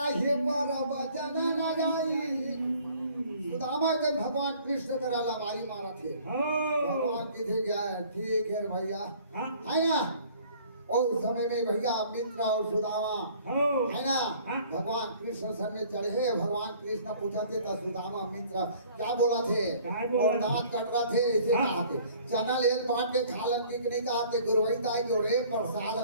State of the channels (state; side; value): inverted; both; correlation -0.54